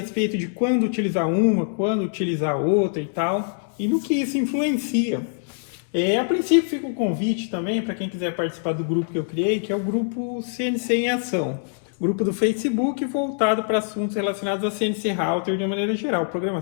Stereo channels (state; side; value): silent; right; digital silence